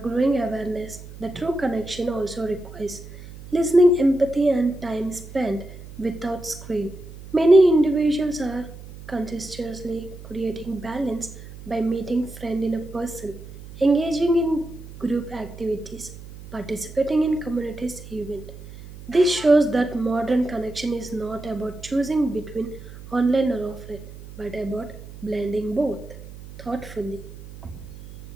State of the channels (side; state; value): right; noise; hum, 15 dB below the sound